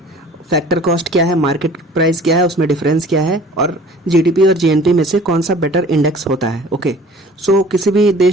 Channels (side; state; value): both; normal; correlation 0.48